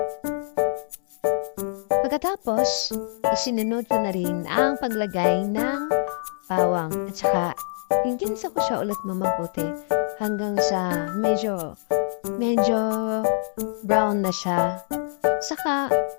Pagkatapos, isinunod ko na rin ang paglagay ng bawang at saka ginisa ko siya ulit mamabuti hanggang sa medyo brown na siya. Saka,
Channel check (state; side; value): silent; right; 62 dB below the other